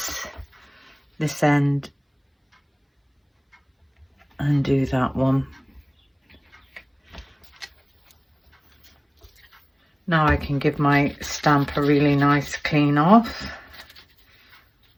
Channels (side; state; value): both; identical; correlation 1.00